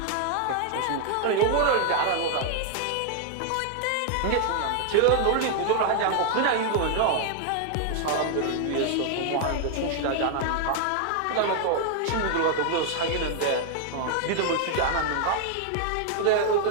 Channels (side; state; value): both; different; correlation 0.00